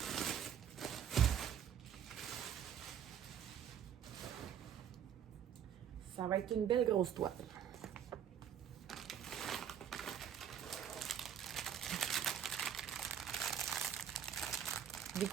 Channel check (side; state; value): left; quieter; 9.0 dB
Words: Ça va être une belle grosse toile. Des